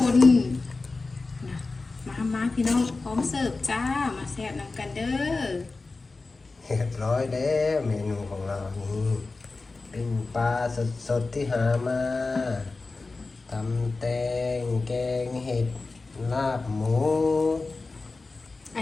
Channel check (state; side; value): quieter; right; 3.7 dB